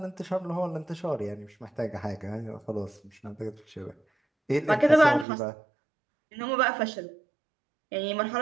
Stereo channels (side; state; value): left; drops out; at 5.2 s